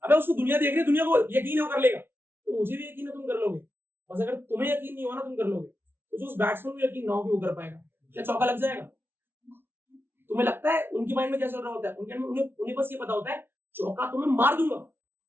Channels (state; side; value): late; left; 0.11 ms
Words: अबे उसको दुनिया देख रही है, दुनिया को यकीन है वो कर लेगा, तो मुझे भी यकीन है तुम कर लोगे। बस अगर तुम्हें यकीन नहीं हो ना तुम कर लोगे, तो जो उस बैट्समैन को यकीन ना हो कि वो कर पाएगा, क्या चौका लग जाएगा? तुम्हें लगता है उनके माइंड में क्या चल रहा होता है? उन्हें बस ये पता होता है चौका तो मैं मार दूंगा,